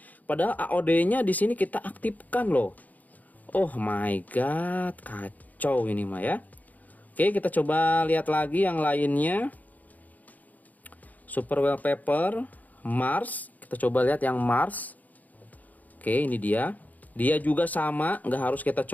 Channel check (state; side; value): late; right; 0.079 ms